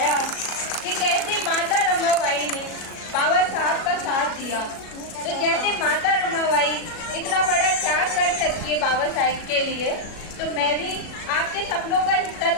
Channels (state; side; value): late; right; 37 ms